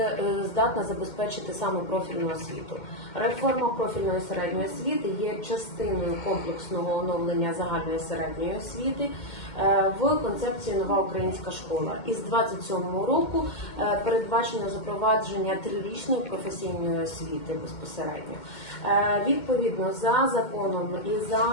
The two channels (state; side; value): late; right; 2.1 ms